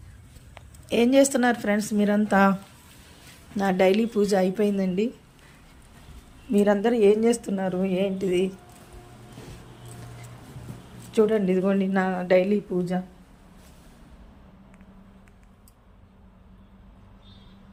ఏం చేస్తున్నారు ఫ్రెండ్స్ మీరంతా? నా డైలీ పూజ అయిపోయిందండి. మీరందరూ ఏం చేస్తున్నారు ఏంటిది? చూడండి, ఇదిగోండి నా డైలీ పూజ.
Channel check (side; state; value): both; identical; correlation 1.00